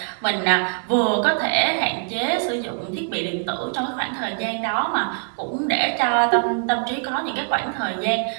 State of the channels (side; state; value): left; silent; 64 dB below the other